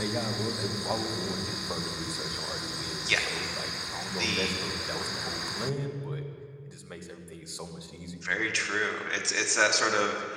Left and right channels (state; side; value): identical; both; correlation 1.00